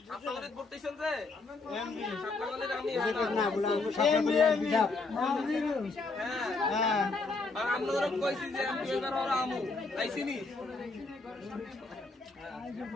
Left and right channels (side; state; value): right; quieter; 3.7 dB